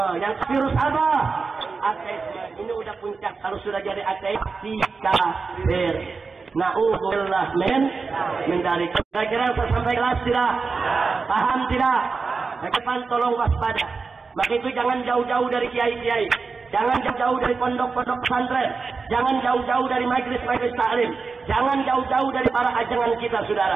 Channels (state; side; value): quieter; left; 4.6 dB